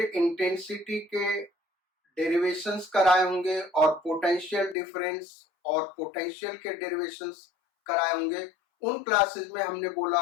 इंटेंसिटी के डेरिवेशंस कराए होंगे और पोटेंशियल डिफरेंस और पोटेंशियल के डेरिवेशंस कराए होंगे। उन क्लासेस में हमने बोला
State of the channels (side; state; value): right; drops out; at 4.8 s